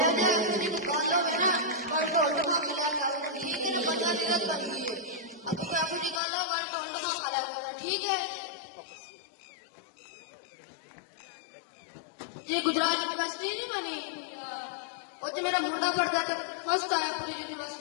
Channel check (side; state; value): right; drops out; at 6.2 s